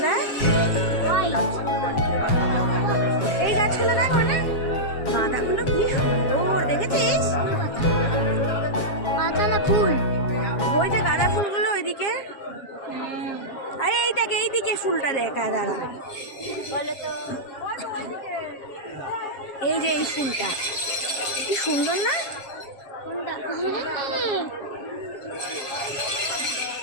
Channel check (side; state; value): right; late; 7.4 ms